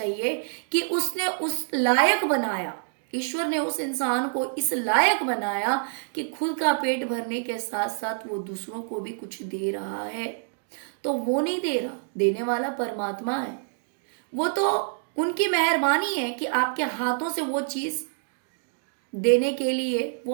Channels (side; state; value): left; silent; digital silence